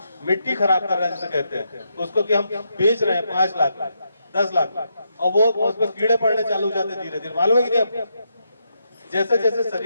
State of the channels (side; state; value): both; inverted; correlation -0.81